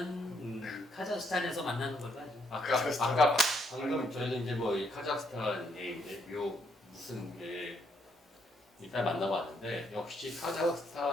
카자흐스탄에서 만나는 걸로 하죠. 아까 방금 저희는 이제 뭐 이 카자흐스탄에 이제 무슨 일단 만나봤는데 역시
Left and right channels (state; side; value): normal; both; correlation 0.73